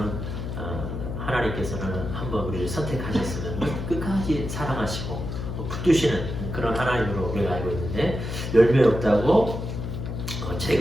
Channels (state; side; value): noise; left; hum, 5 dB below the sound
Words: 하나님께서는 한번 우리를 선택하셨으면 끝까지 사랑하시고 붙드시는 그런 하나님으로 우리가 알고 있는데, 열매 없다고